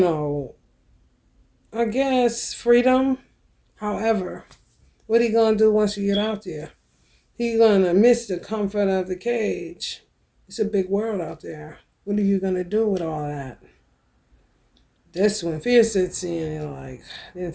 I guess freedom. However, what he gonna do once you get out there? He gonna miss the comfort of the cage. It's a big world out there. What are you gonna do with all that? That's when fear sets in. Like, I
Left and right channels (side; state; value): both; identical; correlation 1.00